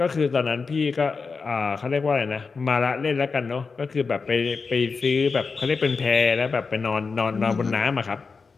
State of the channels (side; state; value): right; quieter; 4.8 dB